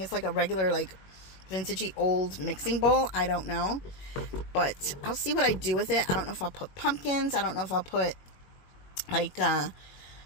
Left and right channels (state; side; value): late; right; 21 ms